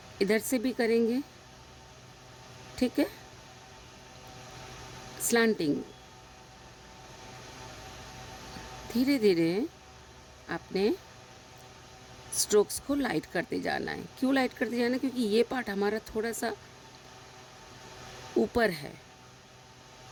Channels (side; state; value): both; identical; correlation 1.00